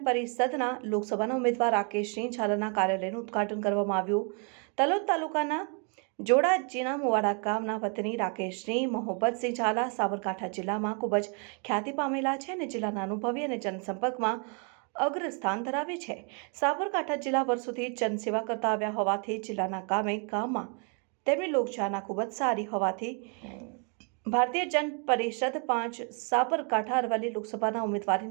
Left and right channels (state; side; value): quieter; left; 37.6 dB